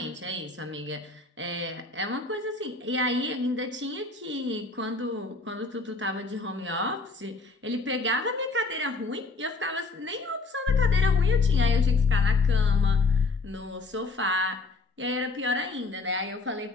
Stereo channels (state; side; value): quieter; right; 3.5 dB